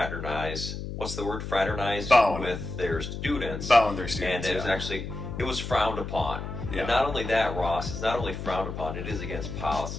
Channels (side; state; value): left; noise; hum, 7 dB below the sound